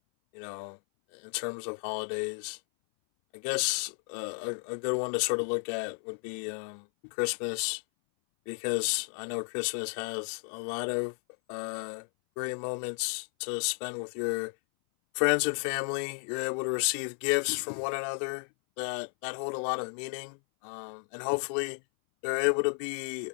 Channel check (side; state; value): right; silent; 56 dB below the other